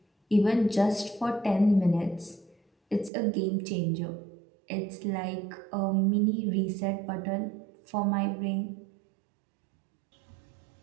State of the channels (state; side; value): drops out; left; at 3.1 s